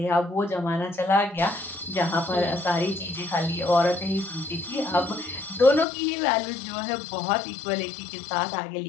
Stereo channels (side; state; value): right; drops out; at 5.9 s